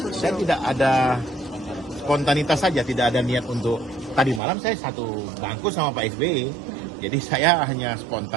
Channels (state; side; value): drops out; left; at 4.4 s